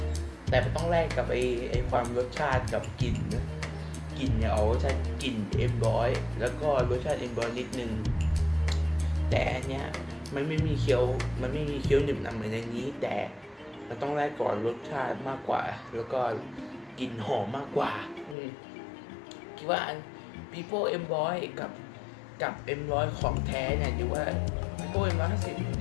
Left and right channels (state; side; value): drops out; right; at 18.4 s